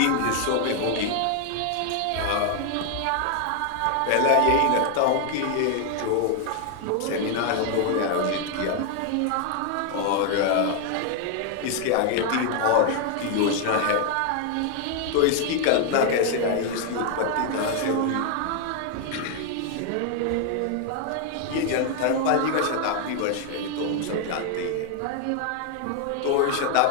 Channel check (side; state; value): both; different; correlation 0.00